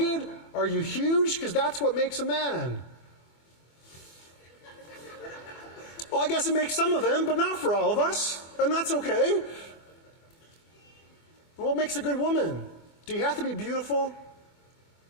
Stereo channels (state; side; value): late; right; 24 ms